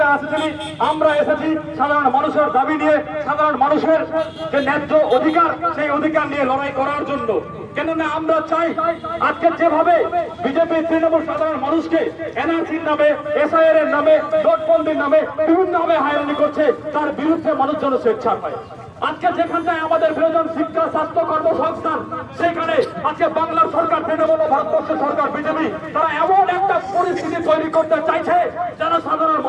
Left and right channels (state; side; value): identical; both; correlation 1.00